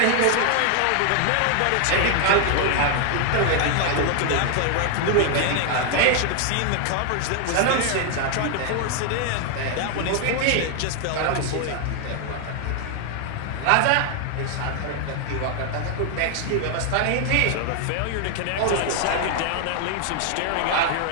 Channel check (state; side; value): different; both; correlation 0.00